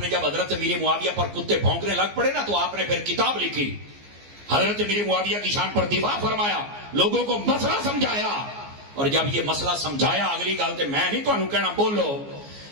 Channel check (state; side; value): late; left; 14 ms